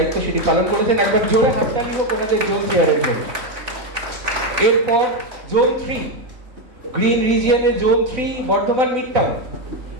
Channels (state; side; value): late; left; 4.0 ms